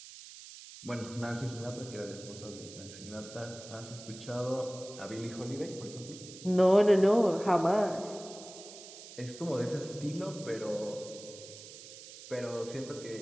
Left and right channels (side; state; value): right; noise; hiss, 15 dB below the sound